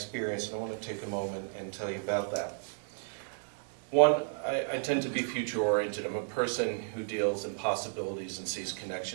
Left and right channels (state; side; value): silent; left; digital silence